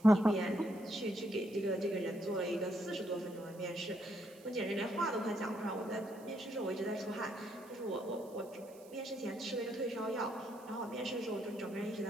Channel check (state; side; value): noise; right; hiss, 24 dB below the sound